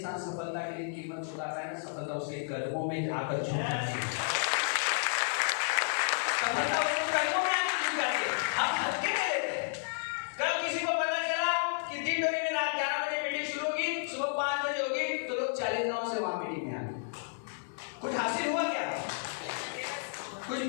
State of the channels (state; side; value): silent; right; digital silence